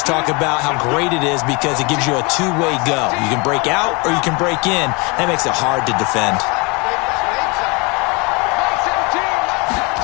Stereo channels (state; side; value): quieter; right; 28.9 dB